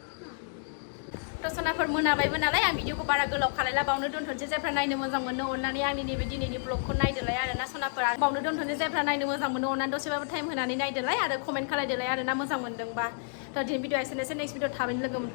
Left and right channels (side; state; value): right; silent; digital silence